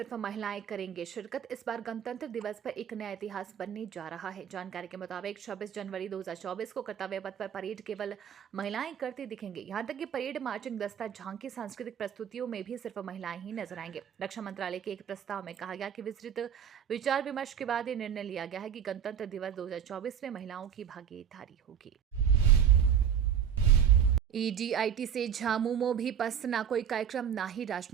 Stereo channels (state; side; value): quieter; left; 8.5 dB